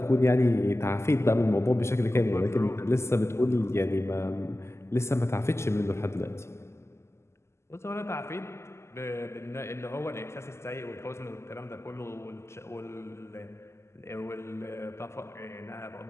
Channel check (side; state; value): right; late; 0.13 ms